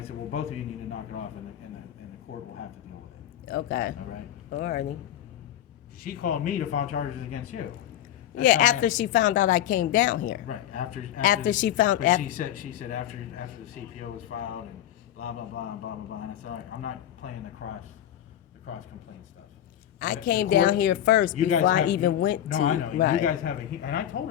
said, well, both of you need to knock it off, and the court will have to deal with it. Okay. All right. Alrighty. She called me to file charges against you. Yeah, after she found out I came down here. Right, After she found- but she said after the CPO was filed and blah, blah, blah, blah, blah, blah, and I said, all right, I'm not playing the cross complaint stuff. I The came court- down here first you guys before I have- even went to. No, I know, you right. guys have and I told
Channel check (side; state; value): right; quieter; 11.3 dB